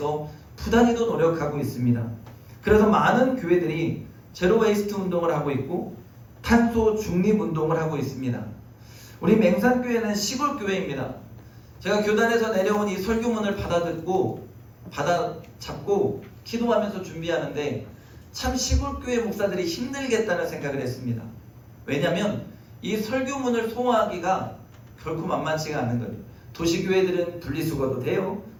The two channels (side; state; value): both; identical; correlation 1.00